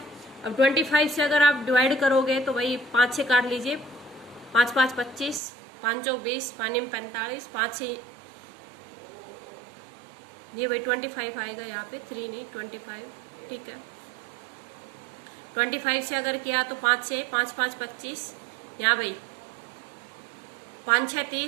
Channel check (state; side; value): drops out; left; at 5.4 s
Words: अब 25 से अगर आप डिवाइड करोगे तो भाई 5 से काट लीजिए, 5 5 25 5 चौक 20 5 45 5 से ये भाई 25 आएगा यहाँ पे 3 नहीं 25। ठीक है। 25 से अगर किया तो 5 से 5 5 25 यहाँ भाई 5 6